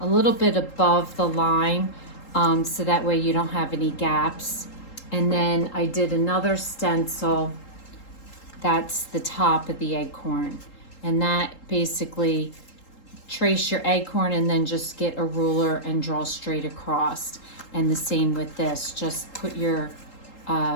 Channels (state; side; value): late; right; 3.8 ms